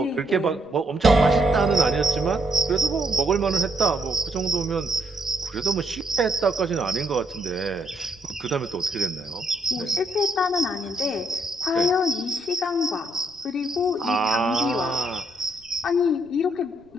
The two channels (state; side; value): noise; right; rumble, 30 dB below the sound